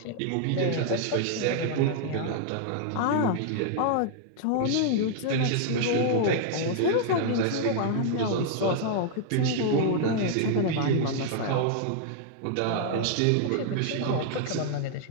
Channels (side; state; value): both; different; correlation -0.01